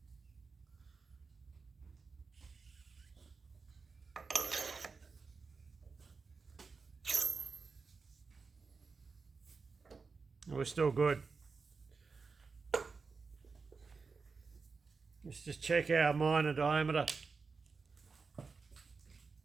We're still good. Let's just check our minor diameter.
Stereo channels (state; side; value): quieter; left; 4.7 dB